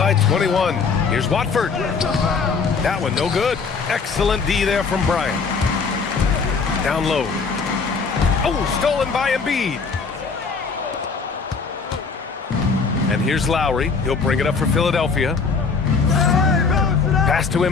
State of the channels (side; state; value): right; quieter; 5.0 dB